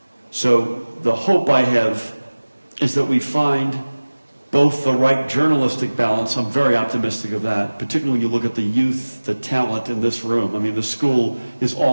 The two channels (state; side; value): inverted; both; correlation -1.00